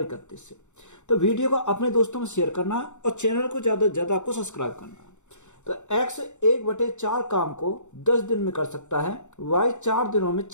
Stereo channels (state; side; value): late; right; 0.84 ms